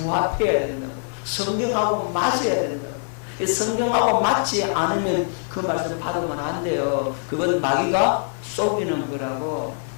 된다고. 성경하고 맞아야 된다고. 성경하고 맞지 않으면 그 말씀 받으면 안 돼요. 그건 마귀가 속이는 거라고.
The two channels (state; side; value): silent; right; digital silence